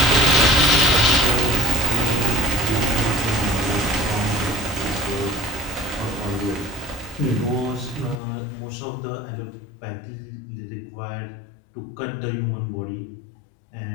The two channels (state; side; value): drops out; right; at 8.2 s